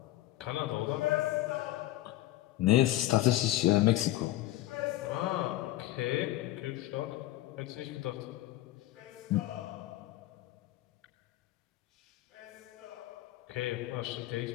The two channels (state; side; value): quieter; right; 15.7 dB